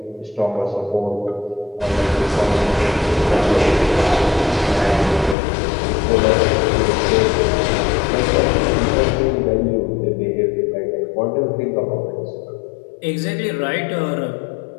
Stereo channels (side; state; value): right; drops out; at 5.4 s